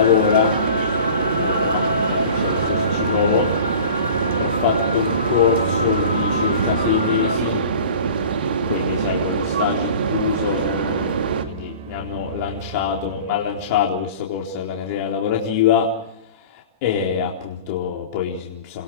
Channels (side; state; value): both; inverted; correlation -0.41